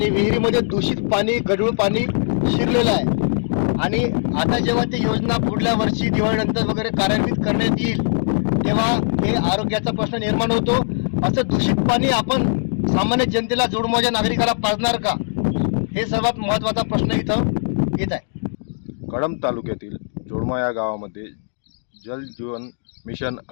विहिरीमध्ये दूषित पाणी गढूळ पाणी शिरलेलं आहे। आणि आता जेव्हा ती योजना पुढल्या वर्षी दिवाळीनंतर वगैरे कार्यान्वित करण्यात येईल तेव्हा हे आरोग्याचा प्रश्न निर्माण होतो। असं दूषित पाणी आपण सामान्य जनतेला जोडमोहाच्या नागरिकाला पाजणार का, हे सर्वात महत्त्वाचा प्रश्न इथं येत आहे। कळंब तालुक्यातील जोडमा या गावामध्ये जल जीवन मिशन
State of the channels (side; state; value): right; silent; digital silence